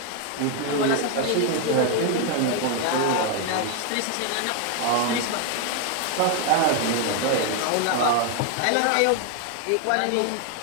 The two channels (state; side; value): different; both; correlation 0.01